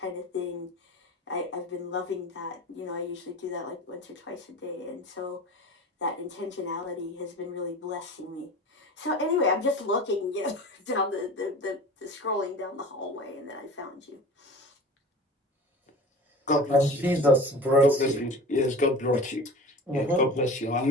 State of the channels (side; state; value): both; normal; correlation 0.37